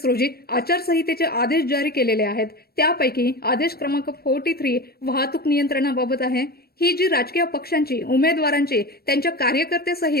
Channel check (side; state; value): right; late; 0.45 ms